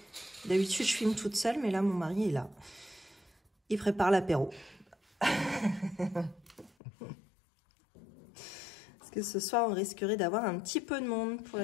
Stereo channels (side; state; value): right; drops out; at 6.7 s